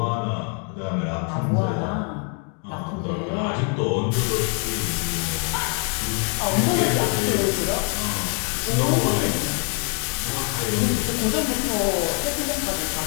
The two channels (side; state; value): right; quieter; 40.0 dB